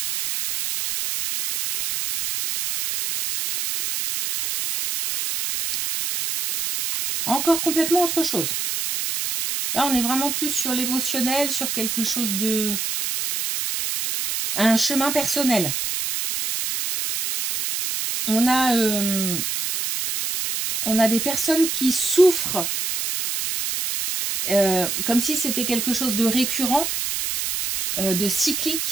Encore complètement autre chose. Là, on est vraiment plus sur l'émotionnel, sur quelque chose de... un chemin personnel. On a des personnes qui souffrent, comme si c'était quelque chose de récurrent, de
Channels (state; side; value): noise; right; hiss, 2 dB below the sound